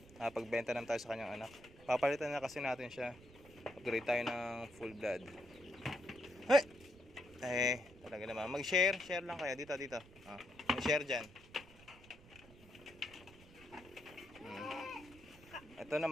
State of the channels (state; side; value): noise; right; rumble, 21 dB below the sound